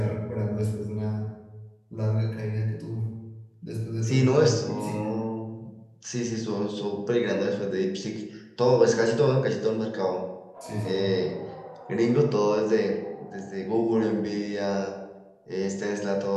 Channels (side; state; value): both; identical; correlation 1.00